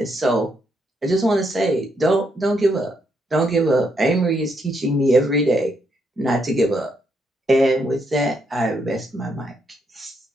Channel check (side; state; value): both; normal; correlation 0.77